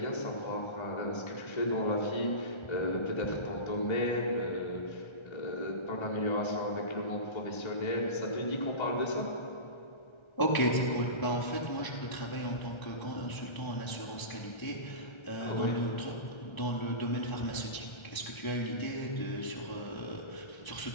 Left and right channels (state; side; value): late; right; 1.3 ms